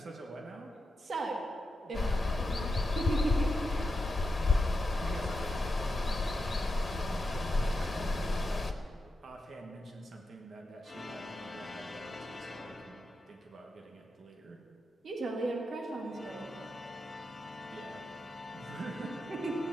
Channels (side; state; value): both; normal; correlation 0.88